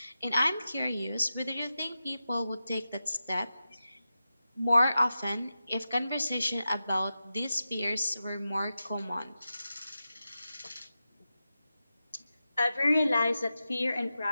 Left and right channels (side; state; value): both; inverted; correlation -0.92